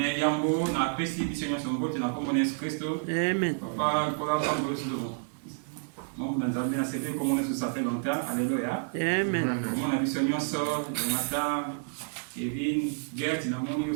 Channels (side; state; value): left; silent; 55 dB below the other